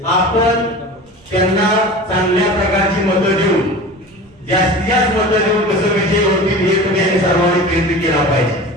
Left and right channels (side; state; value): right; noise; rumble, 30 dB below the sound